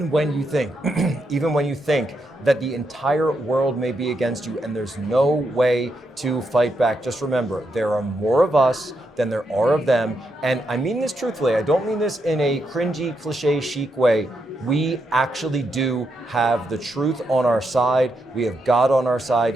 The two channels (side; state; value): both; normal; correlation 0.82